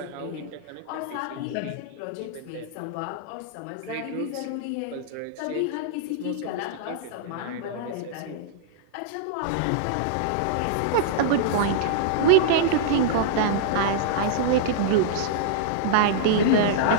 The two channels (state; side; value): different; both; correlation -0.02